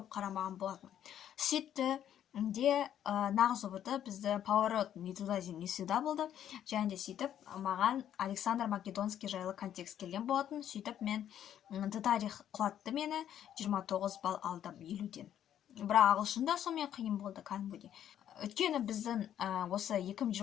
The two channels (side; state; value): right; quieter; 10.4 dB